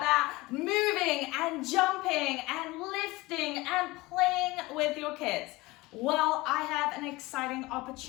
moving and jumping and lifting and playing with your kids? Well, I have an exciting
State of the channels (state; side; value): quieter; right; 21.2 dB